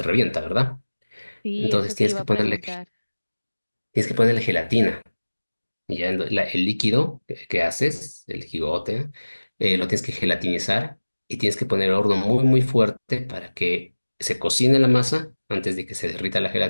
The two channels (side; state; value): both; inverted; correlation -1.00